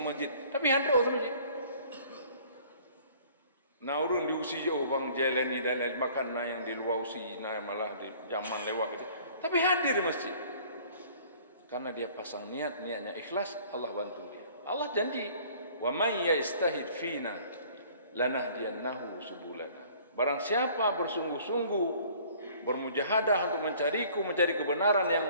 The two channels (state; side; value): inverted; both; correlation -0.53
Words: Tapi handuk ke masjid. Nah urun diusi jauh bang jalan ni dan makan na yang di luar usi, na malah di zaman lewat je. Tapi hadir masjid. Karena dia pasang niat, niatnya ikhlas, Allah bantu dia. Allah janji, wa may yastahid fina lanahdiyannahu subulana. Barang siapa bersungguh-sungguh bermujahadah untuk mencariku, mencari kebenaran